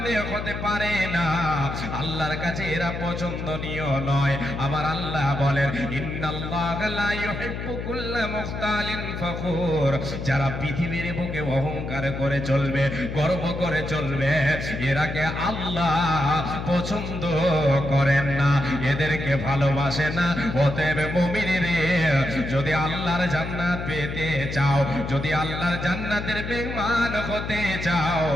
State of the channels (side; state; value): left; noise; hum, 6 dB below the sound